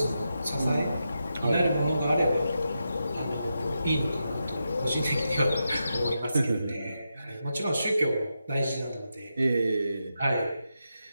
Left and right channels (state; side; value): inverted; both; correlation -0.87